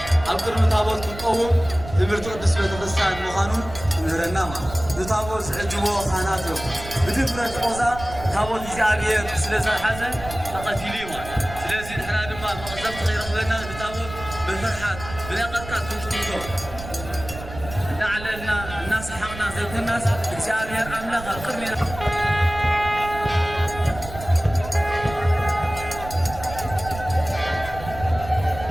أبكر متابوت كقوم تمرتو قدس بيتفسان مخانون نهرنا ما نتابوت سعجبو خاناتو بدفرة قوزا تابوت إزعابير سلسة حزن تقتيلي ما سلسة نحنا دما مقزبت غير أخذنا نتابوت بالفرحات بلاقتك كنتو لعلنا الناس حقنا زي الناس እግዚአብሔር አምላክ አቅርሜ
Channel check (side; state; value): right; noise; rumble, 12 dB below the sound